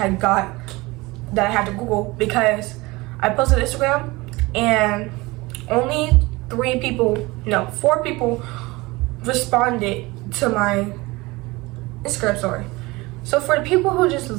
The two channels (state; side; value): quieter; left; 22.3 dB